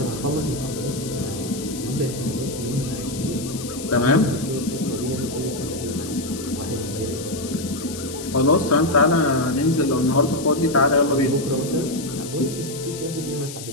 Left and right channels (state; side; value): noise; left; hiss, 11 dB below the sound